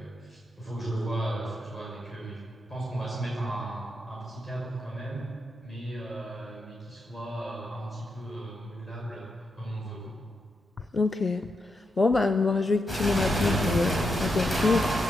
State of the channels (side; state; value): both; normal; correlation 0.84